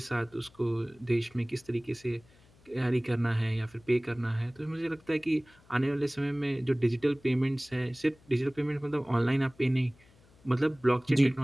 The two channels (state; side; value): noise; left; hum, 29 dB below the sound